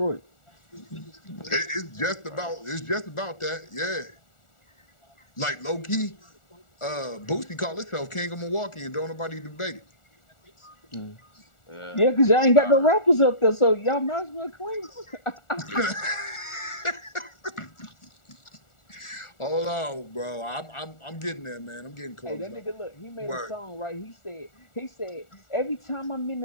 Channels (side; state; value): right; late; 1.4 ms